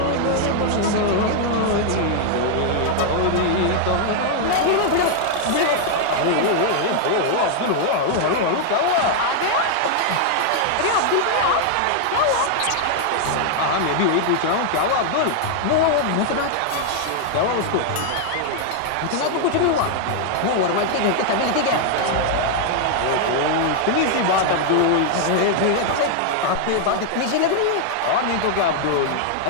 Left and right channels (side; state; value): both; different; correlation 0.00